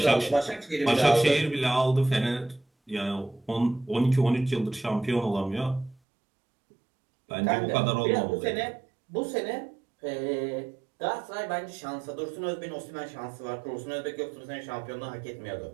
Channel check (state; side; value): drops out; left; at 6.0 s